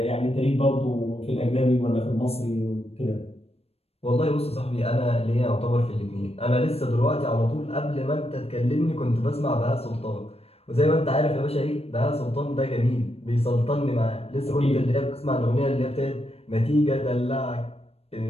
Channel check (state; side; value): late; right; 0.29 ms